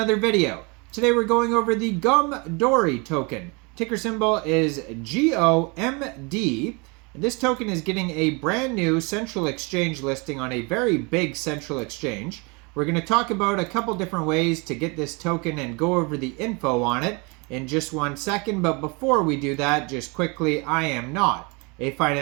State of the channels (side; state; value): left; quieter; 29.6 dB